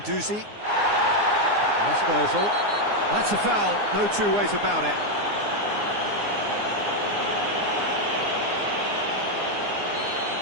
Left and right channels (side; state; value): left; late; 9.7 ms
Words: That's Ozil. That's a foul, no two ways about it.